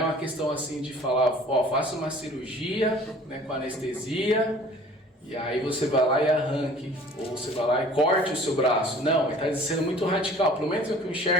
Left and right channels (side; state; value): both; normal; correlation 0.48